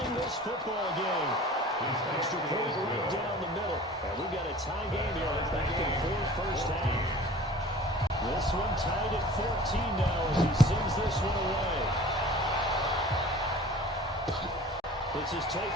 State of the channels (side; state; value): both; normal; correlation 0.44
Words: this football game. Extra point right down the middle. And we've got a tie game here. It's back and forth first half. This one tied at 14 now as he sends this one away. This is